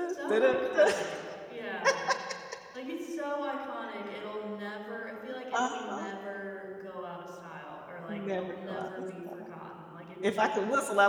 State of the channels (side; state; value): both; identical; correlation 1.00